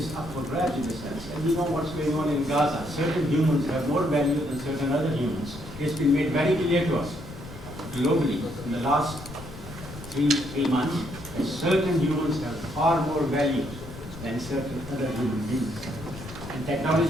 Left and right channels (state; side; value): noise; left; rumble, 14 dB below the sound